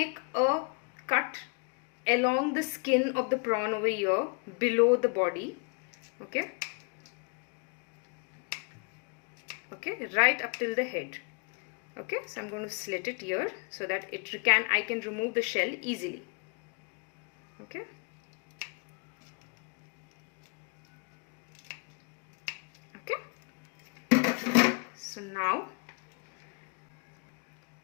a cut along the skin of the prawn over here below the body. Okay, right up till the head. Okay, so I'm going to slit it here so that I can remove the shell easily. Okay, so now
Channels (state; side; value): quieter; right; 34.8 dB